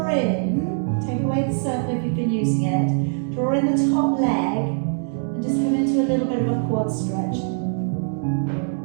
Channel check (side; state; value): left; silent; 64 dB below the other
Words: in, take away the circle if you've been using it, draw in the top leg and just come into a little bit of a quad stretch.